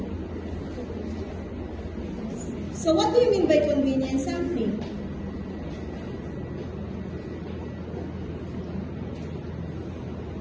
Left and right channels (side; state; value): both; identical; correlation 1.00